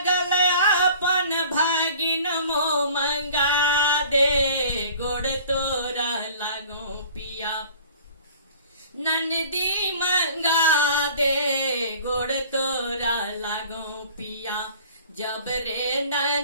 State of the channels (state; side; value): inverted; both; correlation -0.46